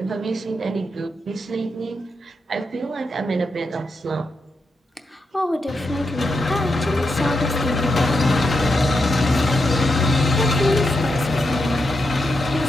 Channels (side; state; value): both; normal; correlation 0.84